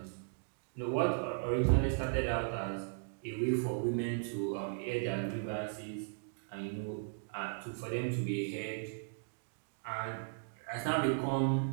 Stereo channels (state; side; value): silent; left; digital silence